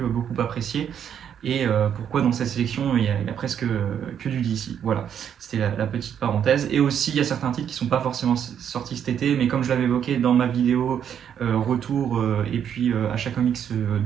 beaucoup apprécier. Et pourquoi dans cette sélection il y a presque que du DC. Voilà, c'était la petite parenthèse. Et aussi il y a certains titres qui ne sont pas forcément sortis cet été, mais comme je l'avais évoqué dans ma vidéo retour et puis achat comics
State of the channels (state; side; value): quieter; left; 8.8 dB